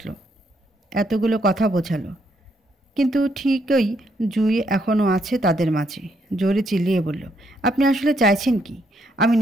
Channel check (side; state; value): both; normal; correlation 0.74